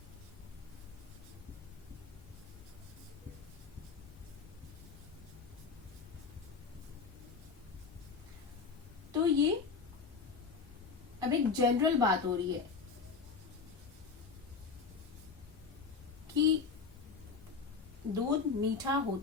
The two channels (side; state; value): right; quieter; 5.2 dB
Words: तो ये अब एक जनरल बात हो रही है कि दूध मीठा